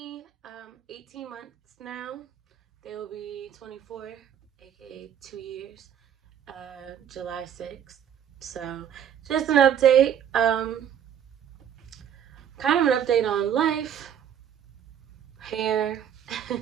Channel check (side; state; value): left; quieter; 9.2 dB